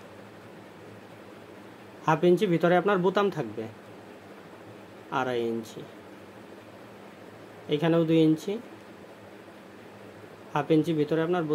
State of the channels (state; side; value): identical; both; correlation 1.00